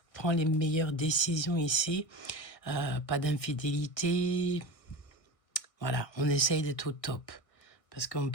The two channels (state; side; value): late; right; 1.6 ms